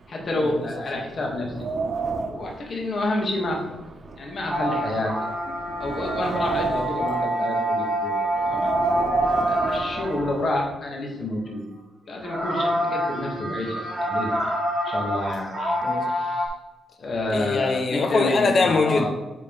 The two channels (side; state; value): both; normal; correlation 0.79